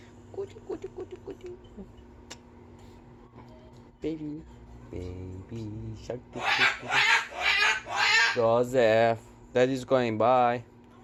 Goody, goody, goody, goody. Baby. Baby shark. Joseph. Daddy's going. Bye.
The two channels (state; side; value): identical; both; correlation 1.00